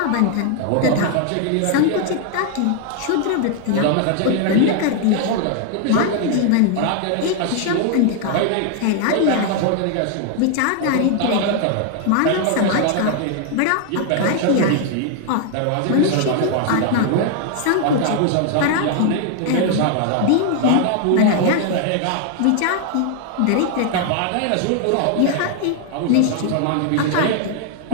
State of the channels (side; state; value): both; different; correlation 0.00